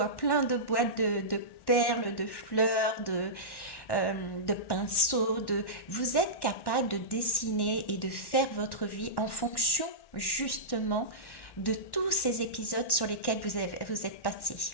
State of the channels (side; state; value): right; late; 1.1 ms